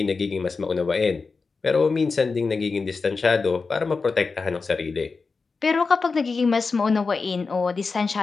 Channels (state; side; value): quieter; right; 4.4 dB